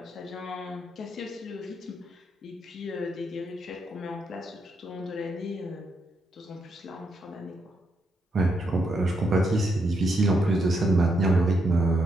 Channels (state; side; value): normal; both; correlation 0.79